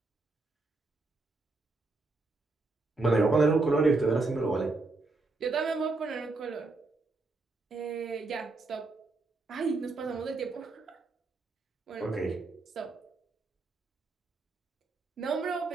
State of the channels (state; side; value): quieter; left; 3.5 dB